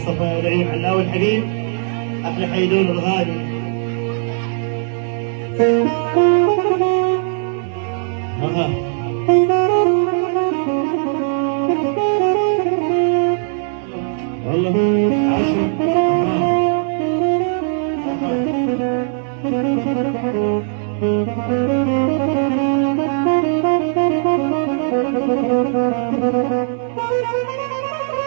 لعيون علاوي الحبيب، أحلى حيدور الغالي. والله عشر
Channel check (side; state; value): left; silent; 67 dB below the other